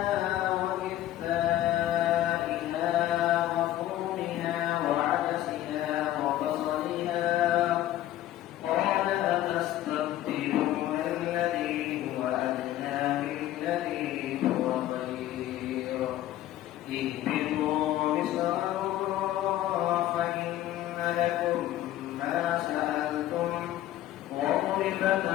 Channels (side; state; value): right; quieter; 13.7 dB